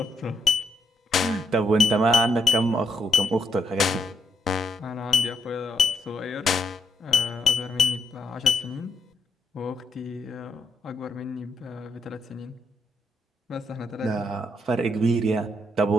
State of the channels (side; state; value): both; normal; correlation 0.78